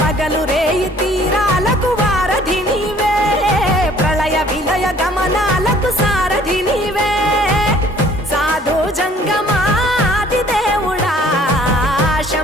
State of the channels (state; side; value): normal; both; correlation 0.56